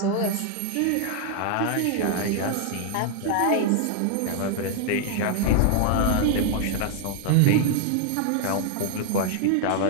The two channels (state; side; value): different; both; correlation 0.00